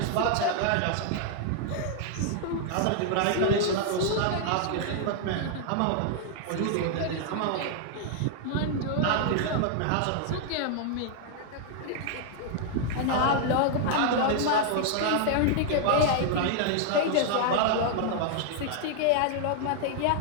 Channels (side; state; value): both; different; correlation 0.00